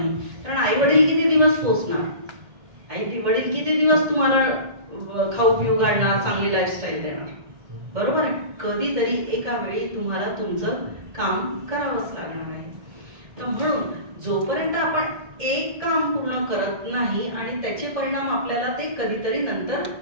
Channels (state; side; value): late; left; 2.1 ms